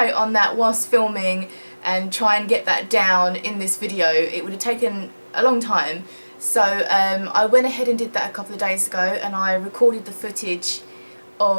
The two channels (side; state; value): both; inverted; correlation -1.00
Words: on that whilst filming and try and get that down in this video. It would have taken a long time. So I went ahead and did that a couple of days ago, and I recorded the footage